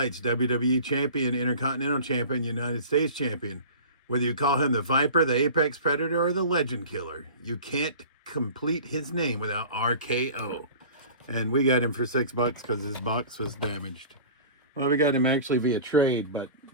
WWE Champion, Intercontinental Champion, United States Champion. Whether you call him the Viper, the Apex Predator, or the Legend Killer, you can't complete his name without RKO. And we got him for $6 because his box was damaged. Well, we got him actually via trade, but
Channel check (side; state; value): both; inverted; correlation -0.40